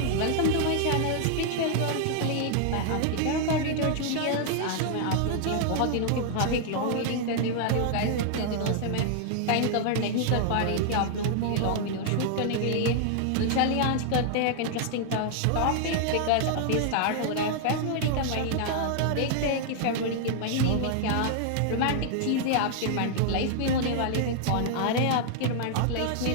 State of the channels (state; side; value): different; both; correlation -0.01